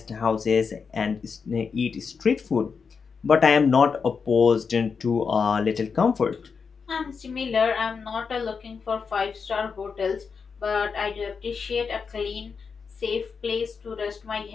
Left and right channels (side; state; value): right; quieter; 5.6 dB